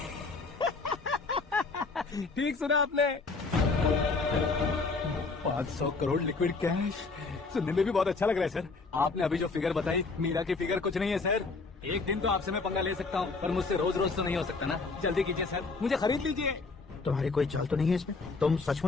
ठीक सुना आपने। 500 करोड़ लिक्विड कैश सुनने में भी बहुत अच्छा लग रहा है सर। आपने अभी जो फिगर बताई, मीरा की फिगर कुछ नहीं है सर। एक दिन तो आपसे मैं पंगा ले सकता हूँ, पर मुझसे रोज रोज तो नहीं हो सकता ना। जल्दी कीजिए सर, मुझे खरीद लीजिए। तुम्हारी कोई चाल तो नहीं है इसमें? तुम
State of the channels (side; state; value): right; quieter; 4.0 dB